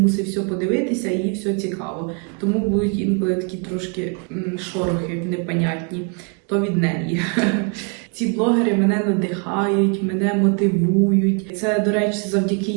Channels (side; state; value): left; quieter; 35.9 dB